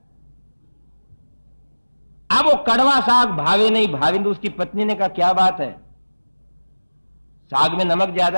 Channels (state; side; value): inverted; both; correlation -1.00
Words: अब वो कड़वा साग भावे नहीं, भावे तो उसकी पत्नी ने कहा क्या बात है, साग में नमक